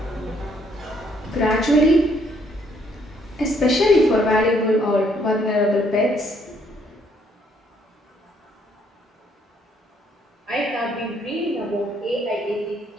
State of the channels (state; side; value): normal; both; correlation 0.67